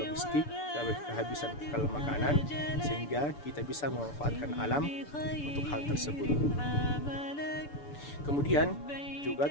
logistik, kehabisan bekal makanan, sehingga kita bisa memanfaatkan alam untuk hal tersebut. Kemudian juga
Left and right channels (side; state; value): right; late; 6.9 ms